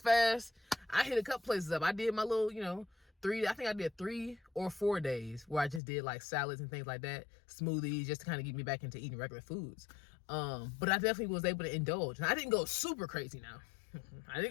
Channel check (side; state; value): right; drops out; at 5.8 s